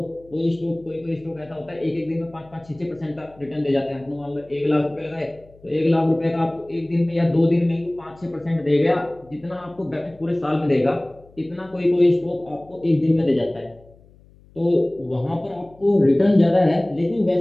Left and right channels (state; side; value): noise; left; hum, 27 dB below the sound